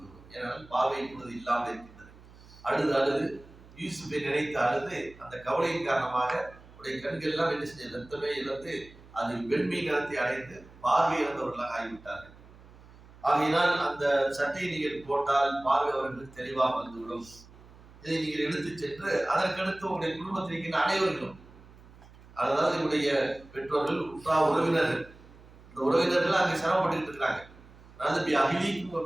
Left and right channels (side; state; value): right; noise; hum, 22 dB below the sound